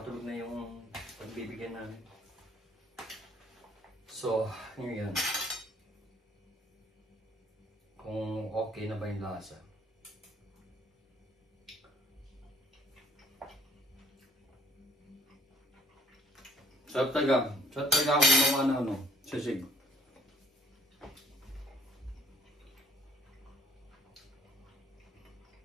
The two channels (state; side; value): normal; both; correlation 0.59